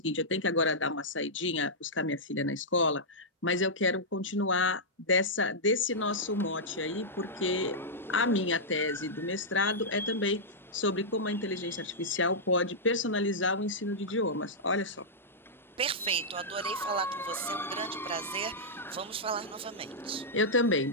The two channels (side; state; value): both; normal; correlation -0.10